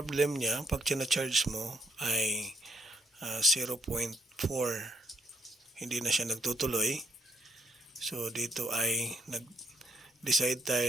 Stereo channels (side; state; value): both; normal; correlation 0.70